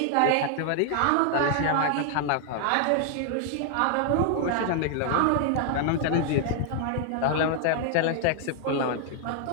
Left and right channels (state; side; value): different; both; correlation 0.00